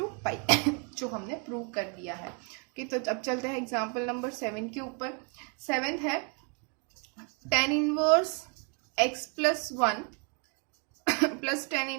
pi जो हमने prove कर दिया है। Okay, तो अब चलते हैं example number 7 के ऊपर। 7 है tan inverse x plus 1 plus tan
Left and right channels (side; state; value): left; quieter; 37.2 dB